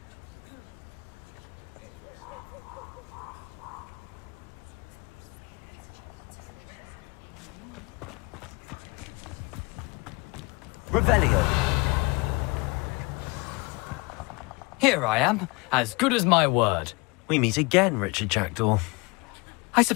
Revelio. Here I am, as good as my word. We meet again, Richard Jackdaw. I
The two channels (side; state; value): right; quieter; 27.4 dB